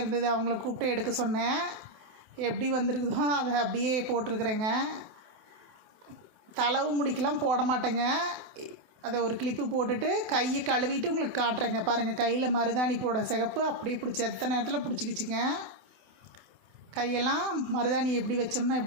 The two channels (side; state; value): left; late; 28 ms